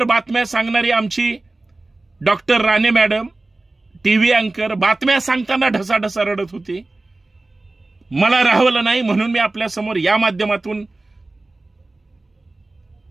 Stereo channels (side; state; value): left; quieter; 3.0 dB